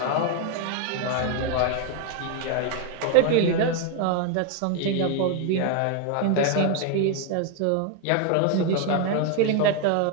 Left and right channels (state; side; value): different; both; correlation 0.01